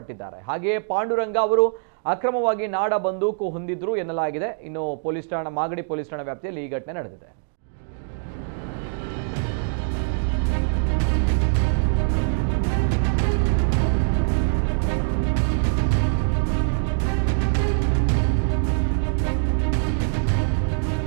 ಹಾಗೆಯೇ ಪಾಂಡುರಂಗ ಅವರು ಅಕ್ರಮವಾಗಿ ನಾಡ ಬಂದೂಕು ಹೊಂದಿದ್ರು ಎನ್ನಲಾಗಿದೆ. ಇನ್ನು ಮಾಗಡಿ ಪೊಲೀಸ್ ಠಾಣಾ ವ್ಯಾಪ್ತಿಯಲ್ಲಿ ಈ ಘಟನೆ ನಡೆದಿದೆ.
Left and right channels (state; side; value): silent; left; digital silence